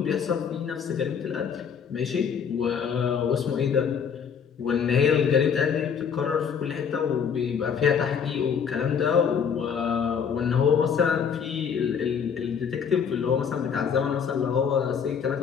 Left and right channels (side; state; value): right; quieter; 7.0 dB